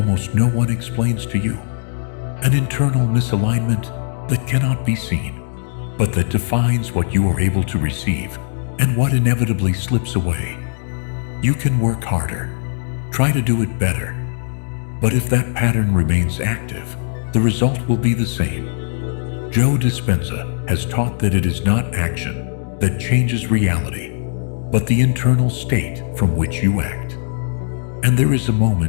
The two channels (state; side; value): silent; right; digital silence